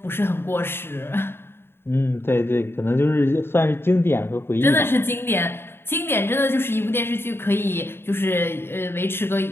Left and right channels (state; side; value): late; right; 0.11 ms